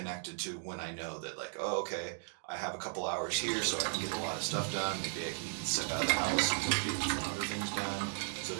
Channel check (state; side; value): silent; left; digital silence